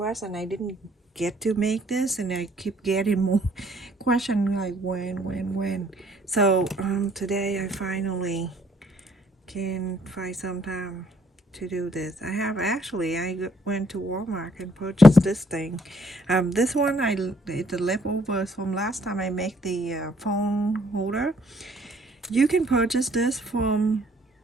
and I didn't get to make this, and I keep getting more questions like when. So today I finally can find some time to do this. I went to Walmart and purchased this thing. This one it's the leftovers from last time I make the phone holder. You can purchase this from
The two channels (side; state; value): both; normal; correlation 0.64